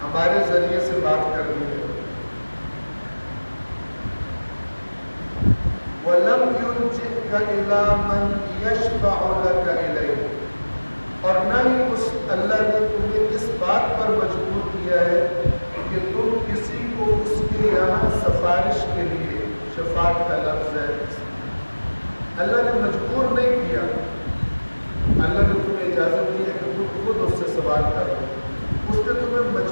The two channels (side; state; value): both; inverted; correlation -1.00